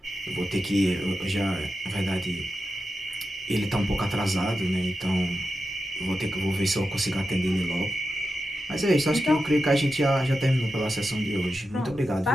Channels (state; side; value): normal; both; correlation 0.90